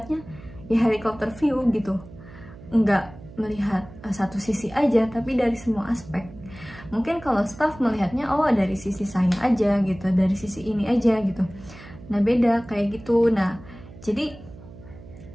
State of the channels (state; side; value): noise; right; hum, 18 dB below the sound